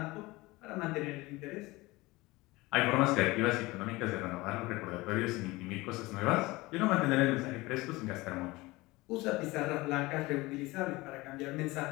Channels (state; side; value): quieter; right; 21.2 dB